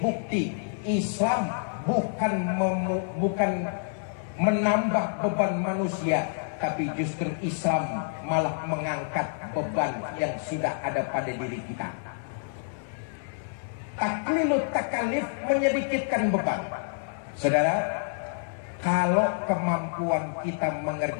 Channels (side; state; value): right; silent; 59 dB below the other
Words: Islam bukan menambah beban manusia, tapi justru Islam malah mengangkat beban yang sudah ada pada diri kita. Taklilut takalif, menyedikitkan beban. Saudara, kalau kemampuan kita